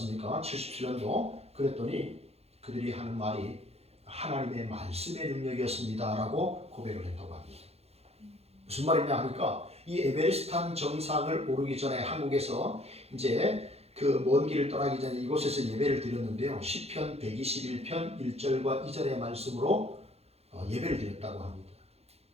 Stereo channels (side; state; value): left; late; 0.30 ms